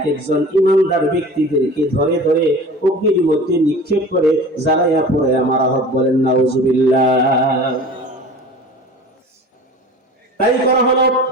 একজন ইমানদার ব্যক্তিদেরকে ধরে ধরে অগ্নির মধ্যে নিক্ষেপ করে জ্বালাইয়া পড়ে মারা হোক। বলেন নাউজুবিল্লাহ। তাই করা হলো,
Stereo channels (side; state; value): both; normal; correlation 0.39